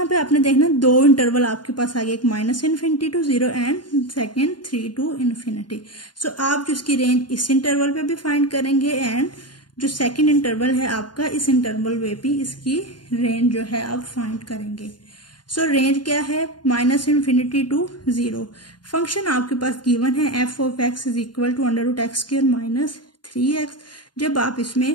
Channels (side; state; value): right; late; 0.71 ms